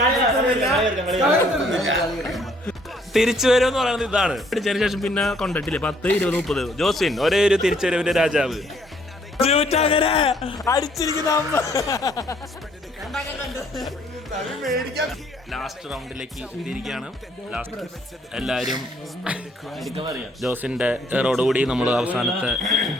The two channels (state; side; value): normal; both; correlation 0.64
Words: തിരിച്ചു വരുമെന്ന് പറയുന്നത് ഇതാണ്. അടിച്ചതിന് ശേഷം പിന്നെ കൊണ്ടിട്ടില്ലേ 10, 20, 30. ജോസ്വിൻ ഒരേ ഒരു തിരിച്ചുവരവിന്റെ രാജാവ്. അങ്ങനെ അടിച്ചിരിക്കുന്ന ലാസ്റ്റ് റൗണ്ടിലേക്ക് എത്തിയിരിക്കുകയാണ്. ലാസ്റ്റ് എല്ലാവരും ജോസിന്റെ റോഡുകൂടി നമ്മൾ അവസാനത്തെ